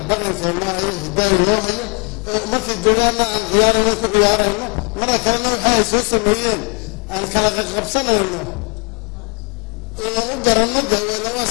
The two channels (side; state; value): right; quieter; 34.2 dB